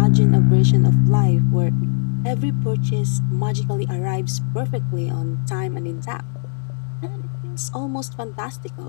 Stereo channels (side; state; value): right; silent; digital silence